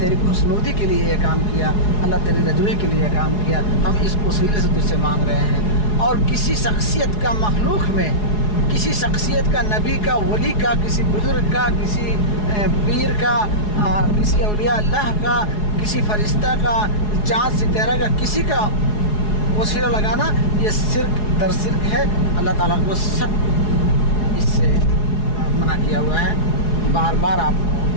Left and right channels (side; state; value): right; late; 4.8 ms